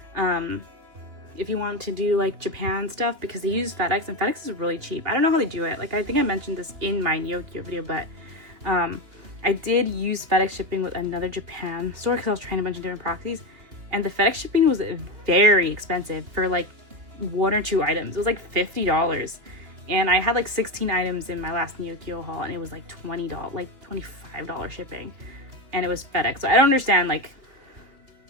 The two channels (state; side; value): late; left; 3.0 ms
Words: If you want to do like Japan stuff, because they use FedEx and FedEx is really cheap. I don't know how they do it. Like I think I mentioned this in my Neokyo video, but I did use FedEx shipping with another Japan store because I was trying a bunch of different proxies, and the FedEx shipping was very expensive for like 1 or 2 items. It was like $50, and I had like 16 items in my last Neokyo haul, and it was like $20, like $25 shipping, and it was FedEx. So I don't understand like